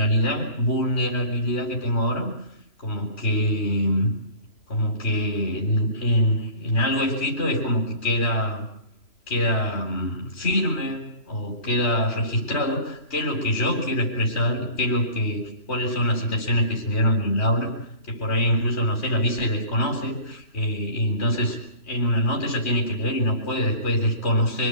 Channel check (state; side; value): late; right; 3.0 ms